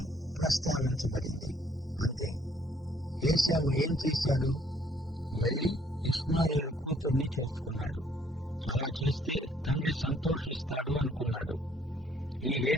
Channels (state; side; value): normal; both; correlation 0.64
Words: ప్రస్తావించబడింది, అంతే. ఏశావు ఏం చేశాడు? వెళ్లి ఇష్మాయేలు కూతుర్ని చేసుకున్నాడు. అలా చేస్తే తండ్రి సంతోషిస్తాడు అనుకున్నాడు. ఈ